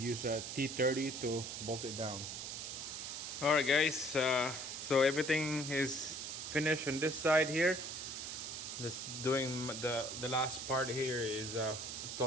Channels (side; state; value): right; noise; hiss, 6 dB below the sound